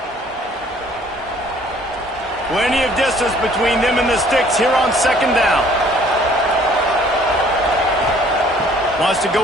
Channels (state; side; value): normal; both; correlation 0.57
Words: Plenty of distance between them and the sticks here on 2nd down. Wants to